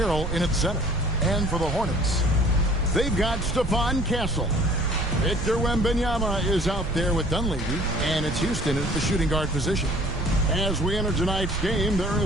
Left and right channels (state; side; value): noise; right; rumble, 6 dB below the sound